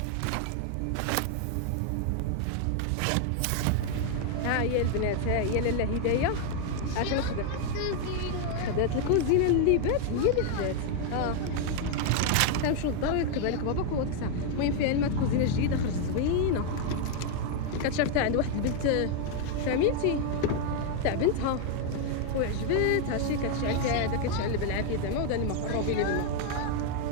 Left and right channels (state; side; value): different; both; correlation 0.00